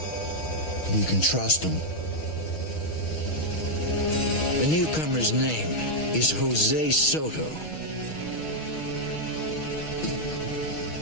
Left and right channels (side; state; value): right; late; 6.4 ms